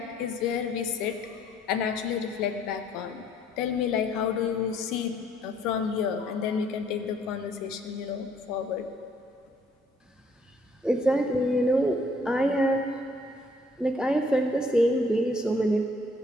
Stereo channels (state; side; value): normal; both; correlation 0.63